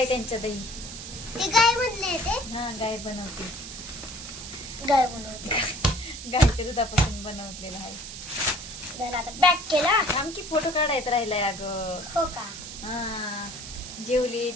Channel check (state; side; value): noise; right; hiss, 10 dB below the sound